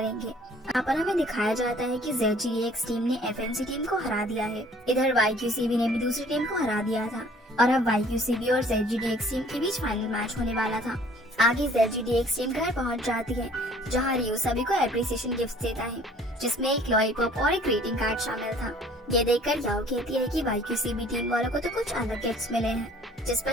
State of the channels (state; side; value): normal; both; correlation 0.54